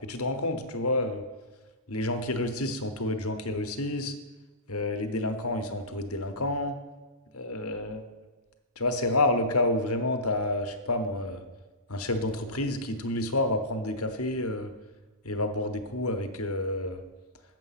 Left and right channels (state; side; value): normal; both; correlation -0.20